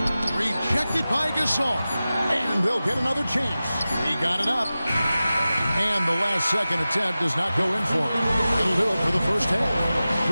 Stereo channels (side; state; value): both; inverted; correlation -0.95